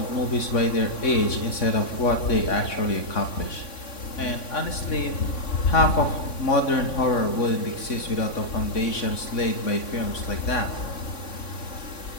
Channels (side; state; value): right; late; 3.6 ms